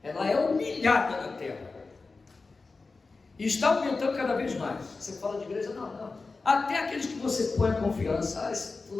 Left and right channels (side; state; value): right; quieter; 4.0 dB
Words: Ela é humilhada na terra. E está aumentando cada vez mais. Você fala de igreja? Não. Até aqueles que você põe confiança: ah, esse